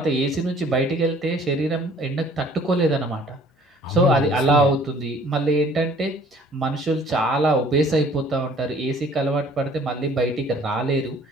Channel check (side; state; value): both; normal; correlation 0.55